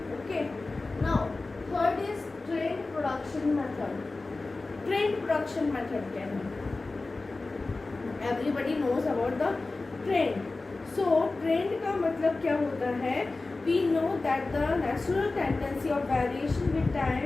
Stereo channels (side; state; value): right; quieter; 3.4 dB